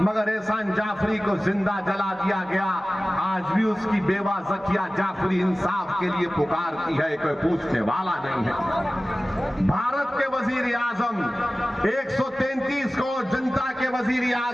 एहसान जाफरी को जिंदा जला दिया गया। आज भी उसकी बेवा जकिया जाफरी इंसाफ के लिए पुकारती है, कोई पूछने वाला नहीं है। भारत के वजीर आजम 133 करोड़ जनता के वजीर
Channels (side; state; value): both; normal; correlation 0.97